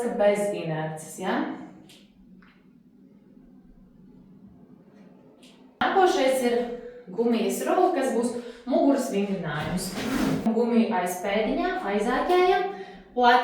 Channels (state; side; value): identical; both; correlation 1.00